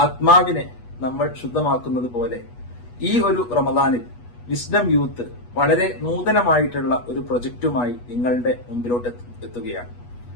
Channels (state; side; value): late; right; 8.3 ms